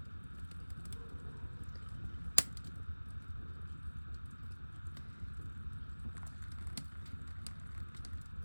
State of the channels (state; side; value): inverted; both; correlation -1.00